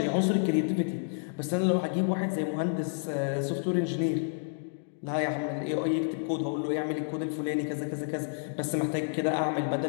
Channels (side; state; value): right; silent; digital silence